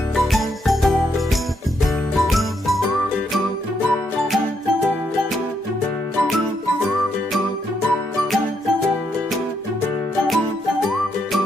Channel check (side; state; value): both; normal; correlation 0.76